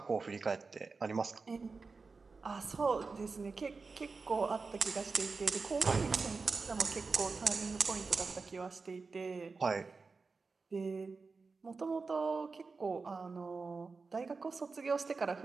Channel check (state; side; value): quieter; left; 4.3 dB